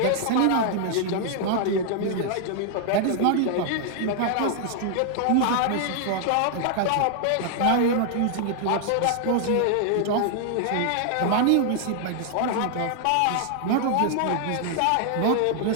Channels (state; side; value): different; both; correlation 0.00